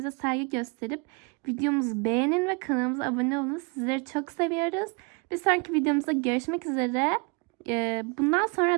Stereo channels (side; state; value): left; quieter; 31.7 dB